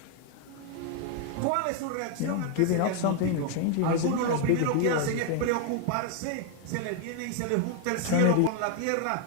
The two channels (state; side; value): different; both; correlation 0.00